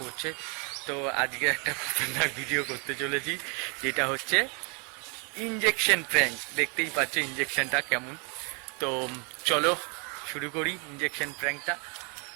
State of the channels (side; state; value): left; quieter; 35.0 dB